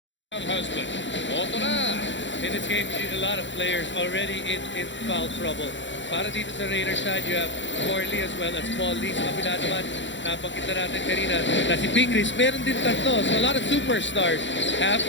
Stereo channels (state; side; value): late; right; 0.54 ms